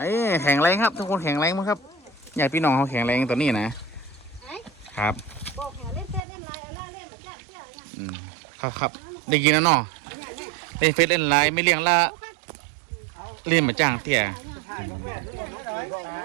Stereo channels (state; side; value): drops out; left; at 6.2 s